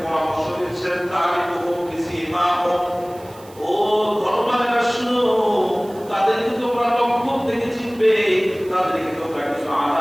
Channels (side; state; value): right; noise; hiss, 24 dB below the sound